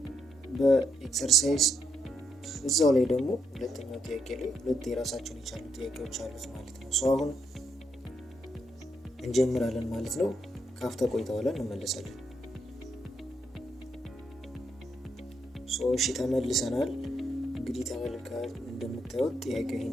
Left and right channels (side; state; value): both; normal; correlation 0.78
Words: በኤክሰርሳይዝ እዛው ላይ ደግሞ ሁለተኛው ጥያቄ ላይ ሁለት የራሳቸውን የቻሉ ጥያቄዎች አሉት ማለት ነው። አሁን እንጀምራለን ማለት ነው። ካፍታ ቆይታ በኋላ እንመለሳለን። እሺ ተመልሰናል። እንግዲህ ተመልካቾች እንደምታዩት ጥያቄው